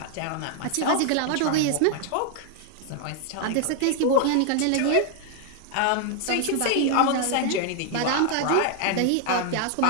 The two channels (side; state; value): both; different; correlation 0.00